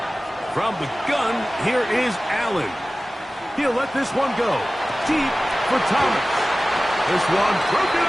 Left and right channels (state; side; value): normal; both; correlation 0.97